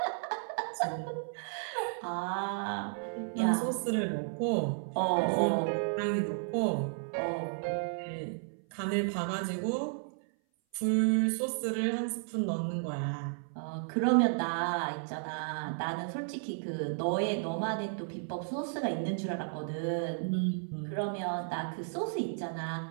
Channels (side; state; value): left; silent; 56 dB below the other